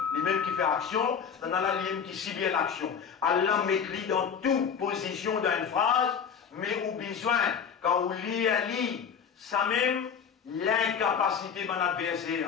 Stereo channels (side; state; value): right; quieter; 7.1 dB